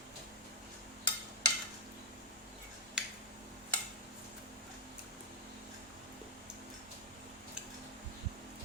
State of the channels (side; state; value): both; normal; correlation 0.03